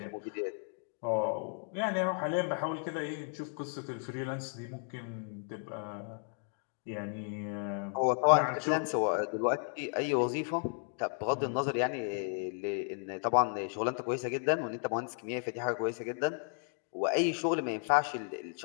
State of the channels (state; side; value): silent; right; 55 dB below the other